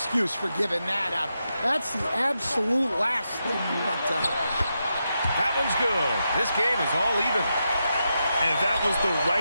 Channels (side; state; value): both; inverted; correlation -0.86